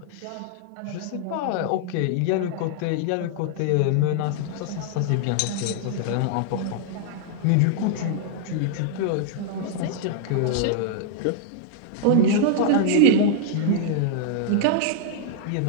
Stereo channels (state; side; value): different; both; correlation -0.01